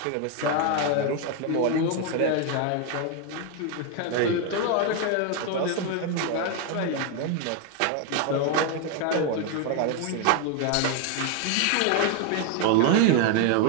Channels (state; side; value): different; both; correlation 0.01